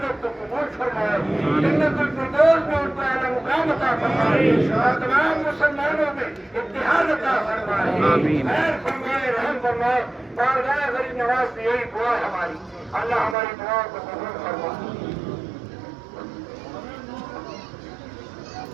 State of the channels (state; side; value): drops out; left; at 13.4 s